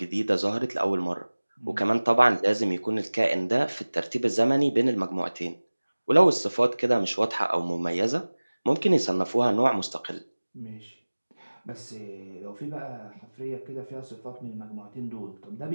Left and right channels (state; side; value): inverted; both; correlation -1.00